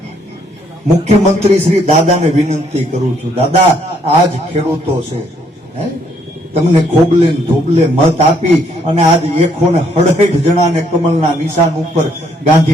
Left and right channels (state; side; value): normal; both; correlation 0.69